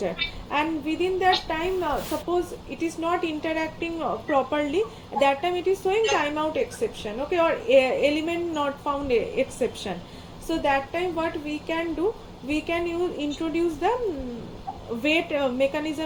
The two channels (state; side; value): identical; both; correlation 1.00